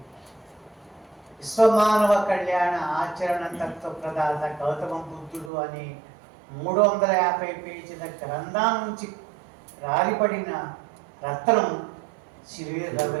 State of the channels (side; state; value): left; drops out; at 5.5 s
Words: విశ్వమానవ కళ్యాణ ఆచరణ తత్వ ప్రదాత గౌతమ బుద్ధుడు అనే 350 పేజీల గ్రంథం నుంచి రాలిపడిన రత్నం శ్రీ